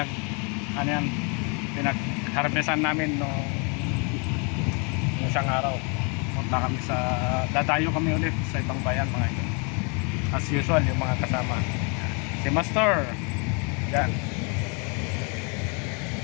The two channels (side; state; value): right; quieter; 34.4 dB